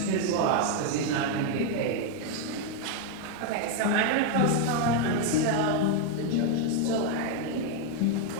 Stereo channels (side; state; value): both; different; correlation 0.01